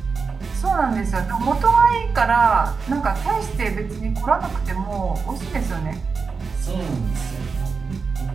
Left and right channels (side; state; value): left; quieter; 5.0 dB